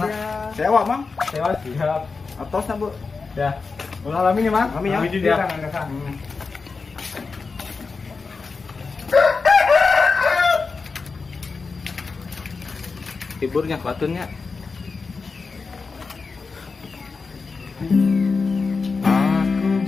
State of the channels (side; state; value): right; quieter; 4.5 dB